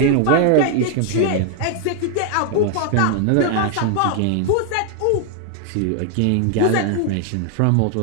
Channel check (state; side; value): different; both; correlation 0.00